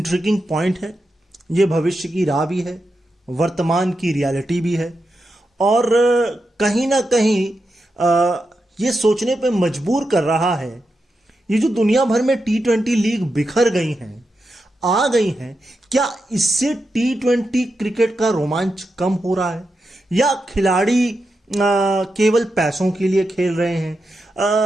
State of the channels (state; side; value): normal; both; correlation 0.88